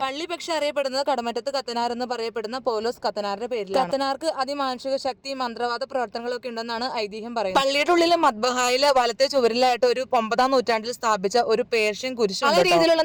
പള്ളി പക്ഷെ അറിയപ്പെടുന്നത് കടമറ്റത്ത് കത്തനാർ എന്ന് പറയപ്പെടുന്ന പൗലോസ് കത്തനാറിന്റെ പേരിൽ. കത്തനാർക്ക് അതിമാനുഷിക ശക്തി, മന്ത്രവാദ പ്രവർത്തനങ്ങളൊക്കെ ഉണ്ടെന്നാണ് ഐതിഹ്യം പറയുന്നത്. പള്ളിയുടെ ഉള്ളിലെ മദ്ബഹായിലെ വലത്തെ ചുവരിലായിട്ട് ഒരു 9-ാം നൂറ്റാണ്ടിൽ സ്ഥാപിച്ച ഒരു പേർഷ്യൻ കുരിശ് ആ രീതിയിലുള്ള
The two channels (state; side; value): identical; both; correlation 1.00